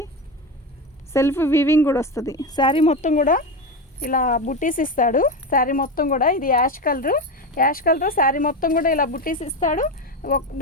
సెల్ఫ్ వీవింగ్ కూడా వస్తుంది. శారీ మొత్తం కూడా ఇలా బుట్టీస్ ఇస్తాడు. శారీ మొత్తం కూడా ఇది యాష్ కలర్ శారీ మొత్తం కూడా ఇలా బుట్టీస్ ఇస్తాడు.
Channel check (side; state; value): both; normal; correlation 0.18